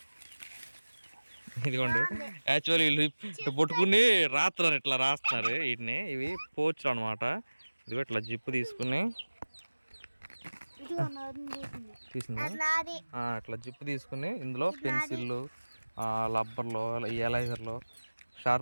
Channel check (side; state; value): both; inverted; correlation -1.00